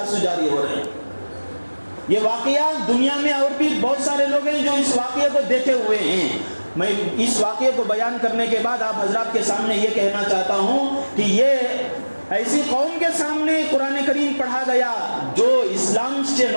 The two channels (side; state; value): both; inverted; correlation -1.00